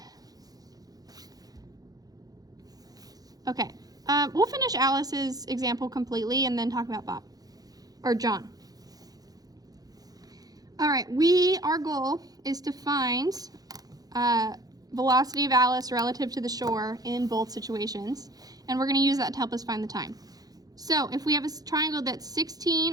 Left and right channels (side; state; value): left; late; 0.18 ms